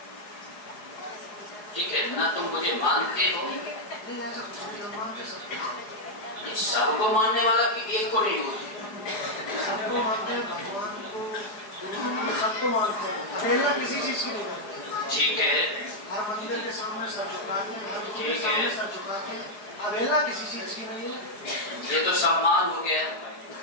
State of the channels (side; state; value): right; late; 4.9 ms